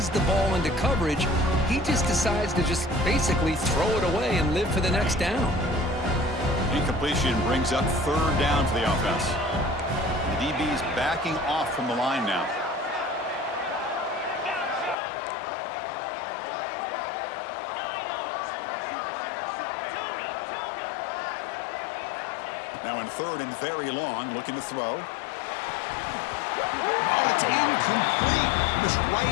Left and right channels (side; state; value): right; drops out; at 15.0 s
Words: the ball into coverage, he just decides to just basically throw it away and live for the next down. Incompletion brings up 3rd down for the offense. The DB's backing off from the line now. Now in 3rd and very long, looking to throw. Oh, it's incomplete. It was